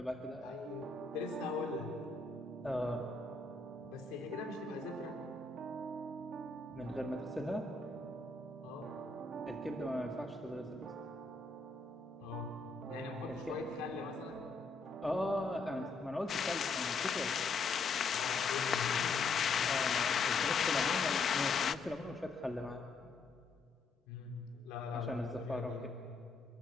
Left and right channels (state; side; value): quieter; right; 4.0 dB